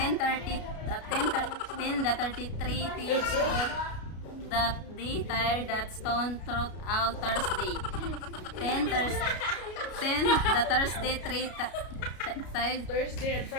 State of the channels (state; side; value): late; right; 33 ms